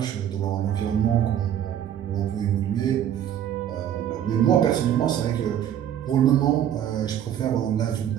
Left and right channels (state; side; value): quieter; left; 10.2 dB